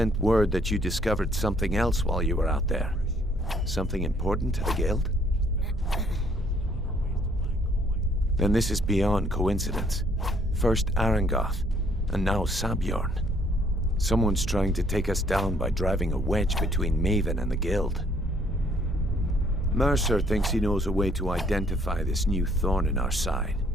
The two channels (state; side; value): normal; both; correlation 0.64